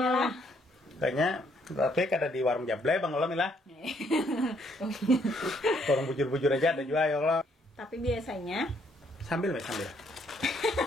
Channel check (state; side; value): normal; both; correlation 0.69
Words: lah. Kayaknya tapi kada di warung Jable Bang Olam lah. Warung bujur-bujur aja ada juga ya Allah. Tapi biasanya Sambil.